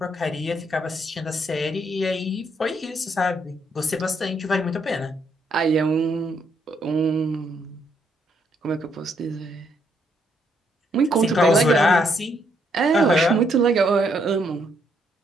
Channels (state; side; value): normal; both; correlation 0.73